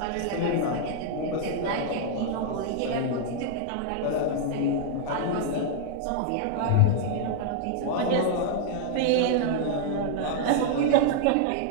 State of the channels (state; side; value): different; both; correlation 0.00